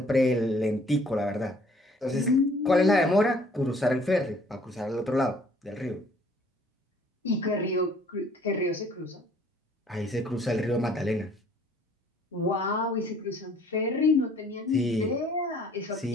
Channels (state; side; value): normal; both; correlation 0.58